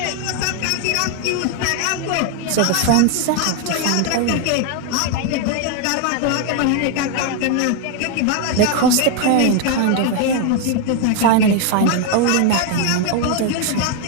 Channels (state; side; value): different; both; correlation 0.01